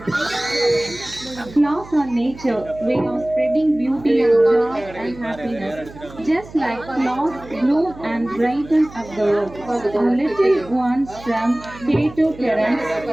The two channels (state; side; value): noise; right; hum, 18 dB below the sound